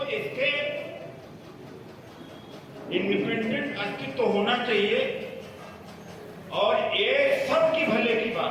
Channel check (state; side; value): identical; both; correlation 1.00